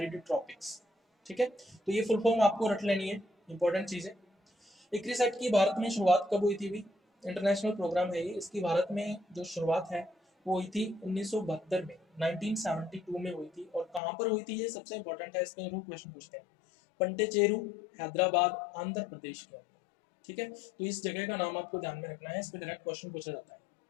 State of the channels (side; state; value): right; drops out; at 14.0 s